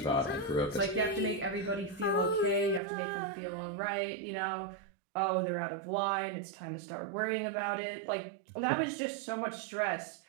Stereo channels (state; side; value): drops out; left; at 2.8 s